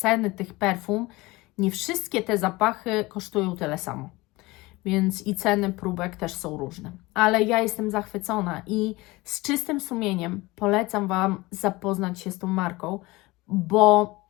tych perfum nie wszystkie te zapachy kosztują tyle samo. Więc i ceny próbek też są różne. Ale ja jestem zachwycona i z czystym sumieniem polecam Wam zapoznać się z tą marką, bo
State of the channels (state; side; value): quieter; right; 21.5 dB